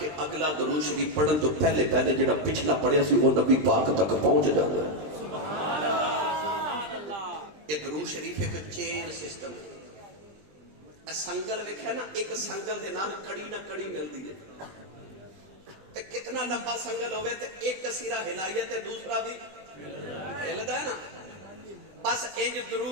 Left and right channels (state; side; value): late; left; 20 ms